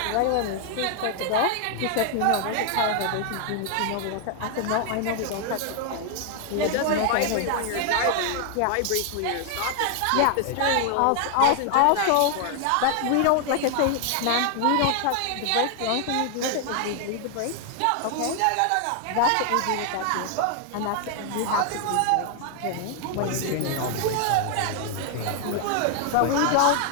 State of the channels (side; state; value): both; different; correlation 0.00